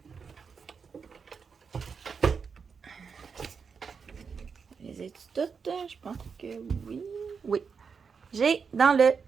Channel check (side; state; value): left; quieter; 5.8 dB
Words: Les ai-tu toutes? Je pense que oui. Oui. J'ai dans le